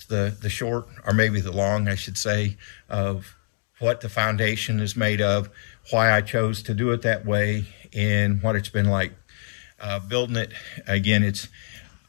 the short, or maybe the long, I should say, of what the foundation is made of, why I chose to do it that way, and what it's been like building it. Again, it's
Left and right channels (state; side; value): silent; right; digital silence